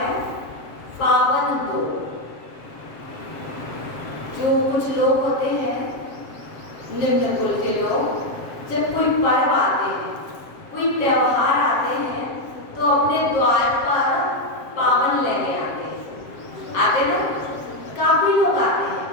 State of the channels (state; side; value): late; right; 7.5 ms